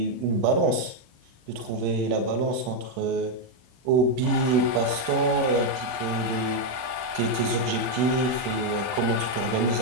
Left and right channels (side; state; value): left; late; 40 ms